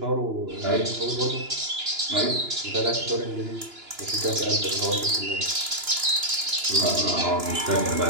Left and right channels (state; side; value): late; left; 2.9 ms